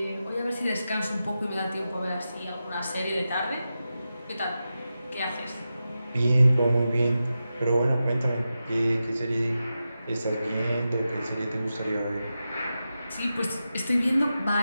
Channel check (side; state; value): both; inverted; correlation -0.91